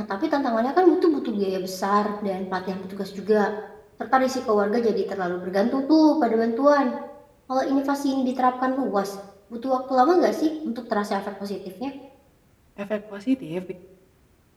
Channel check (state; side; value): identical; both; correlation 1.00